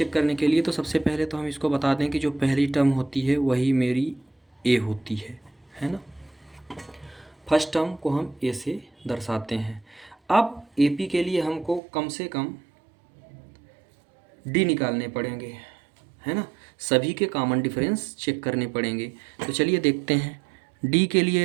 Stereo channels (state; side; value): drops out; left; at 11.8 s